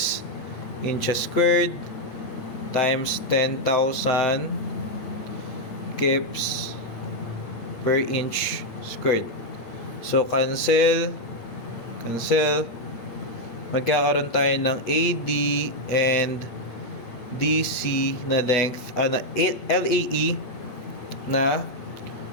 inches squared times 10,000 kips per inch squared. So, cancel. Magkakaroon tayo ng AD and DC na length, na LAE na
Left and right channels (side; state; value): right; late; 8.6 ms